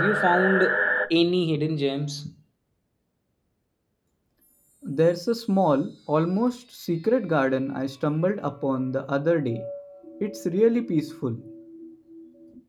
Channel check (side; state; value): both; identical; correlation 1.00